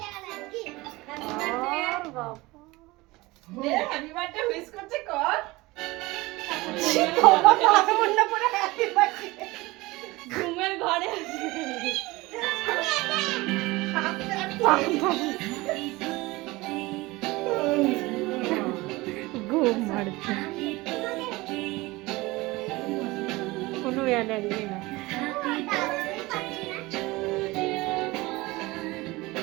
হ্যাপি বার্থডে উইশ করছে কর। ঘুমের ঘরে ঘুম মারছে, কোনো এনার্জি না।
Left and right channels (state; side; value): quieter; left; 21.3 dB